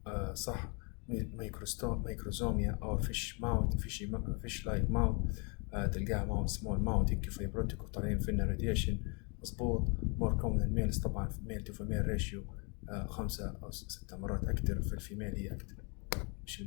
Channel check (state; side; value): quieter; right; 33.9 dB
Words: صح. microsomia أو fish like mouth تلقاها small mouth هيك fibrotic وطالعين فينا radiation مظبوط. more common in males طبعا male to female ratio 5 أو 6 مرات أكثر. في الفيميل هي أكثر مش